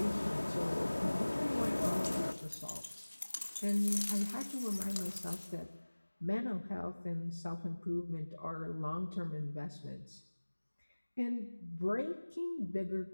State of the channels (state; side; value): inverted; both; correlation -1.00